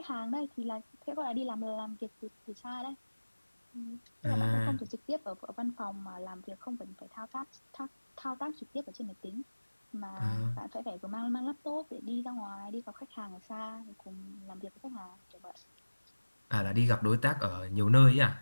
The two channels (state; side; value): inverted; both; correlation -1.00